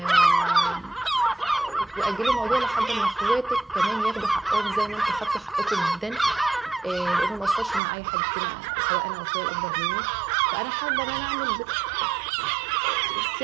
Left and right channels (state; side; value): drops out; left; at 7.8 s